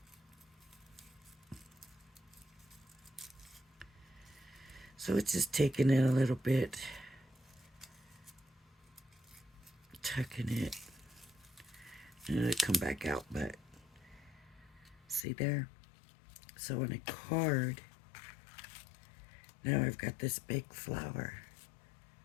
So it's just taking it a little bit, tucking it, and it'll come back out, but see there? So on a card, now I've got this big flower.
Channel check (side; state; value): right; drops out; at 15.2 s